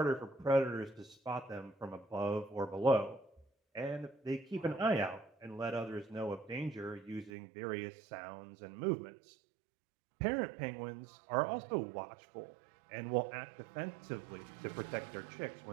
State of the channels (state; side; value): drops out; left; at 7.3 s